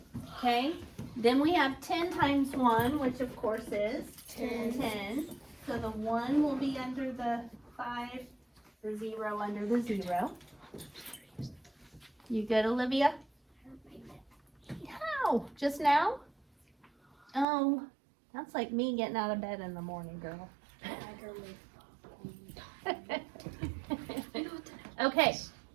Okay. Then we have 10 times 1, which of course is 10. So the 1 will be under the 5, the 0 under the 0. You good, Olivia? How? Just now? Oh, that's like me getting out of bed in the morning, girl. Okay.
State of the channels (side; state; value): left; drops out; at 17.4 s